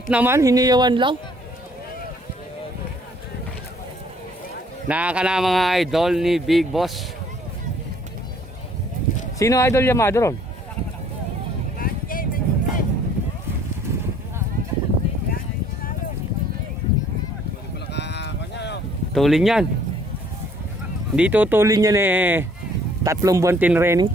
naman, hiniyawan lang. Nakaka na mga idol ni Big Boss. Sino idol Yamado ron? Tulin yan. Hindi tutulin yan eh. 3 buwan tinraining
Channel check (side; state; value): both; normal; correlation 0.60